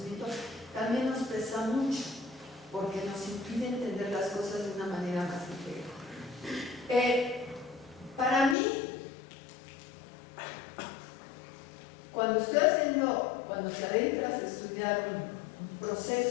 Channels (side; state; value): right; drops out; at 8.6 s